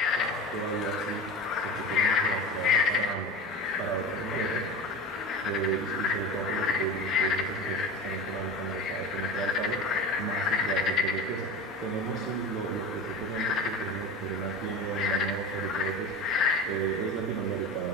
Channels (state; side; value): normal; both; correlation 0.30